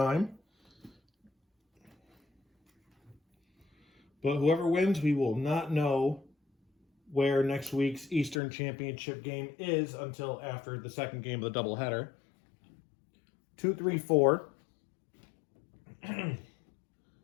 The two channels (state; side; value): drops out; right; at 8.4 s